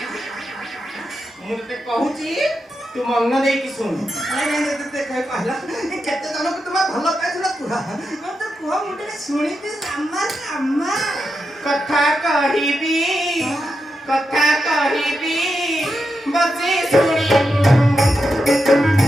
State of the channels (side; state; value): both; normal; correlation 0.87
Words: ମୁଁ ତତେ କହୁଛି ତୁ ମନ ଦେଇକି ଶୁଣୁ କହିଲା କେତେ ଜଣକୁ ତୁମେ ଭଲ ପାଇଥିଲ କୁହ ତ କୁହ ମୁଁ ଟିକେ ଶୁଣିବି ରାମ ରାମ କଥା କହିବି ବସି ଶୁଣିବୁ